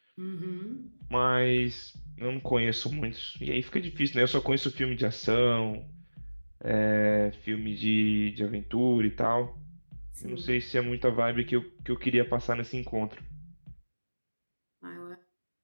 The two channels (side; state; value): both; inverted; correlation -1.00